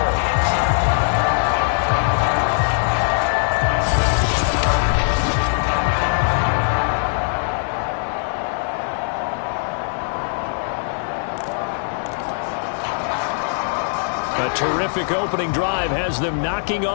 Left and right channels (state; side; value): silent; right; 65 dB below the other